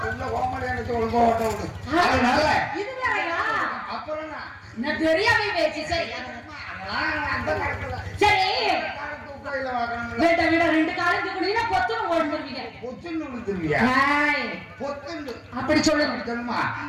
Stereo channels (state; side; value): identical; both; correlation 1.00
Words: உள்ள கோமாடி அடிச்சு ஒழுங்கா ஓட்ட விடு. அதனால இது வேறையா? அப்புறம் நான் தெரியாம பேசி. சரி சரி, வீட்ட வீட ரெண்டு காலம் தூக்குனீங்கன்னா பொத்துன்னு ஓடுவீங்க. பொத்துன்னு விழுந்துருவியா? பொத்துன்னு அப்படி சொல்லுங்க. சொல்லுமா